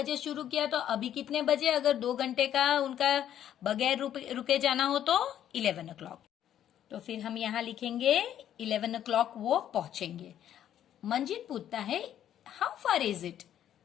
शुरू किया तो अभी कितने बजे, अगर 2 घंटे का उनका बगैर रुके जाना हो तो 11 o'clock। तो फिर हम यहाँ लिखेंगे 11 o'clock वो पहुंचेंगे। मंजित पूछता है हाउ फार इज इट,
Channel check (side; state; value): right; quieter; 10.7 dB